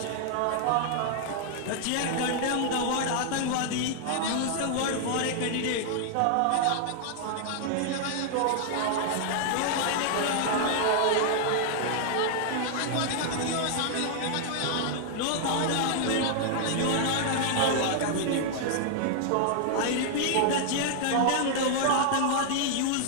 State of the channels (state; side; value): different; both; correlation 0.00